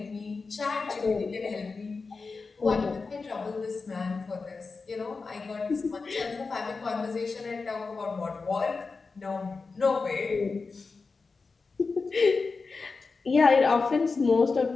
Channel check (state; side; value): quieter; right; 4.3 dB